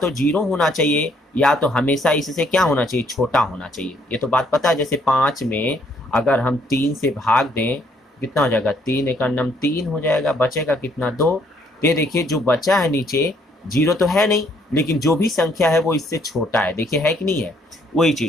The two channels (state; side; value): normal; both; correlation 0.67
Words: 0 होना चाहिए या तो हमेशा इससे क्या होना चाहिए, छोटा होना चाहिए। ये तो बात पता है। जैसे 5 में अगर हम 3 से भाग दें कितना हो जाएगा, 3 एक नम 3 हो जाएगा, बचेगा कितना, 2। ये देखिए जो बचा है नीचे 0 तो है नहीं, लेकिन जो भी संख्या है वो इससे छोटा है, देखिए है कि नहीं है, वही